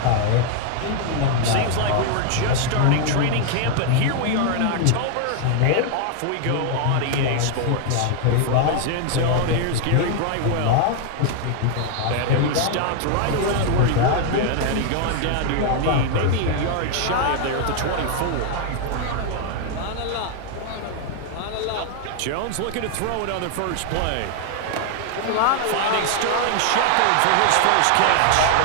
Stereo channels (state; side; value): different; both; correlation 0.00